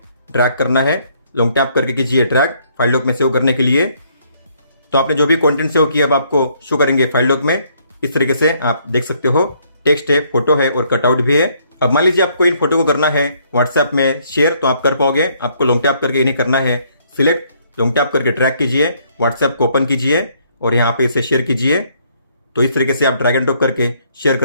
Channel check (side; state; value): both; inverted; correlation -0.67